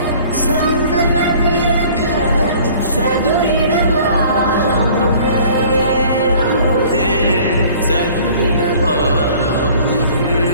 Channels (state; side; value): inverted; both; correlation -0.50